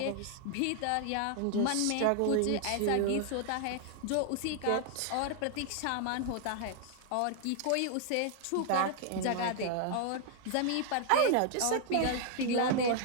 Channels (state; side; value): different; both; correlation 0.00